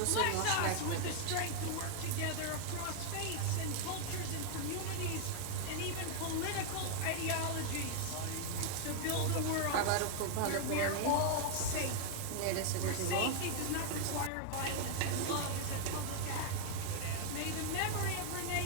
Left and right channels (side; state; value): both; different; correlation 0.00